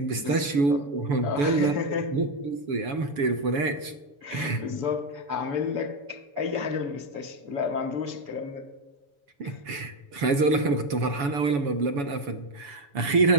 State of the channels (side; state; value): left; late; 7.0 ms